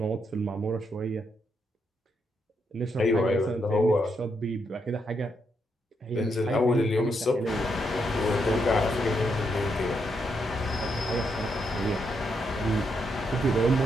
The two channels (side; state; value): both; normal; correlation 0.79